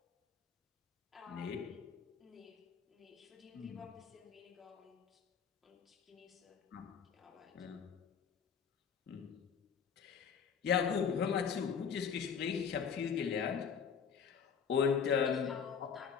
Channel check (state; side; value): quieter; right; 6.8 dB